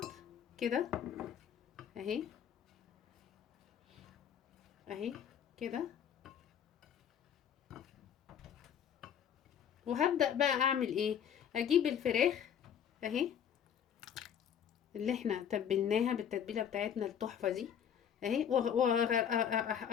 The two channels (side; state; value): right; quieter; 8.6 dB